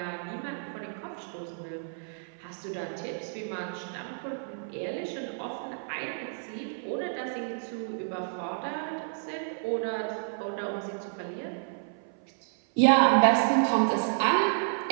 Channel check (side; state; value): left; silent; 58 dB below the other